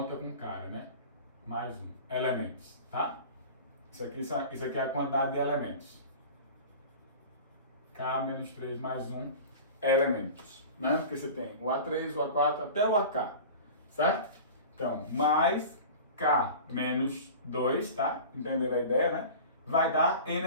com cara, né? Mais 1. Elementos, tá? Isso aqui é a quantidade de elementos. K menos 3 mais 1 elementos, né? Porque você tem o A3, o A4 até o AK, certo? Então, mais K menos 2, tá? Entenderam a ideia, né? Vai dar N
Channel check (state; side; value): inverted; both; correlation -0.37